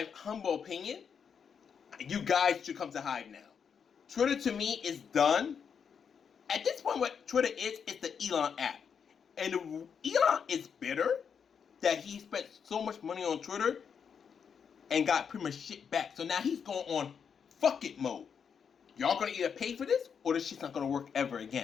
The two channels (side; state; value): right; quieter; 6.9 dB